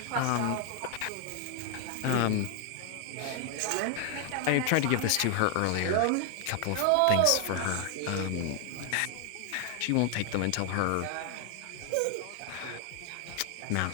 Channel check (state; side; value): different; both; correlation 0.00